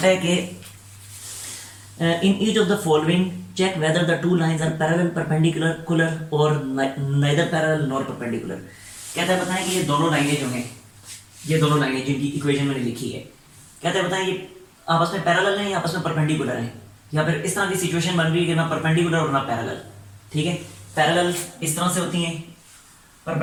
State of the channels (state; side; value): identical; both; correlation 1.00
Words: है कि in each of the following check whether the two lines are parallel perpendicular or neither parallel nor perpendicular। कहता है बताएं कि ये दोनों लाइनें जो हैं, ये दोनों लाइनें जिनकी इक्वेशन मैंने लिखी है, कहता है बताएं ये आपस में पैरेलल हैं या आपस में परपेंडिकुलर हैं, या फिर इस तरह की सिचुएशन बन रही है कि ना परपेंडिकुलर और ना पैरेलल। ठीक है, पैरेलल इस तरह से होती हैं,